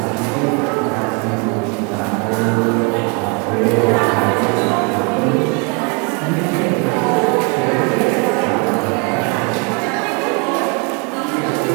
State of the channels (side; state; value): left; quieter; 33.4 dB